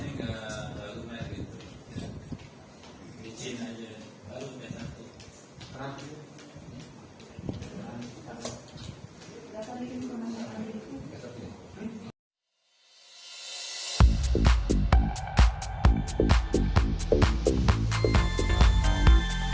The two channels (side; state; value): both; identical; correlation 1.00